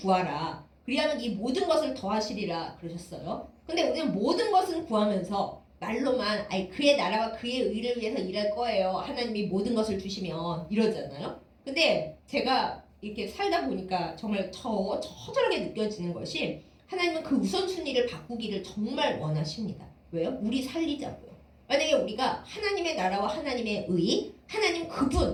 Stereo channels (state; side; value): identical; both; correlation 1.00